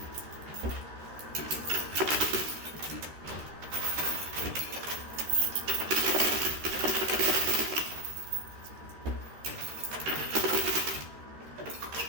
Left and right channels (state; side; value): late; left; 13 ms